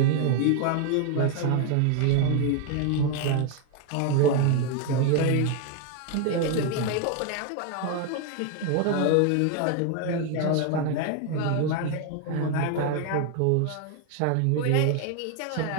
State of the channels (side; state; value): both; different; correlation 0.01